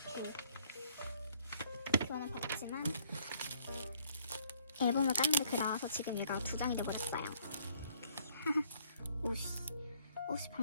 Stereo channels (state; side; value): inverted; both; correlation -0.64